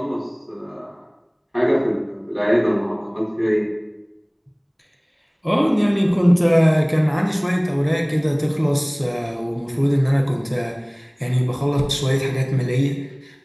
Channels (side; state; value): both; identical; correlation 1.00